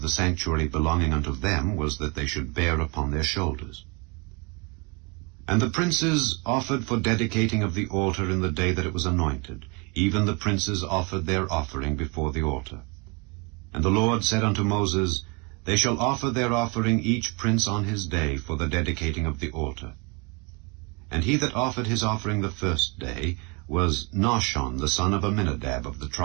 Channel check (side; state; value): left; quieter; 29.6 dB